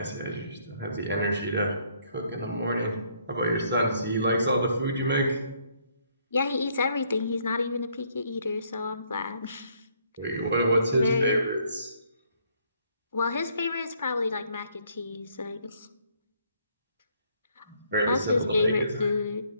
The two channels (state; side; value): inverted; both; correlation -0.67